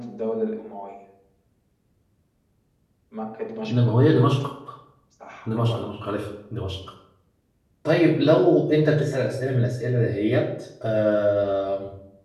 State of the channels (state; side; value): identical; both; correlation 1.00